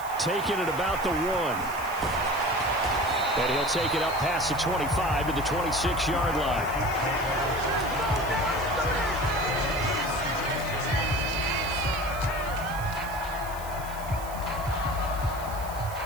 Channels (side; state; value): right; noise; hiss, 16 dB below the sound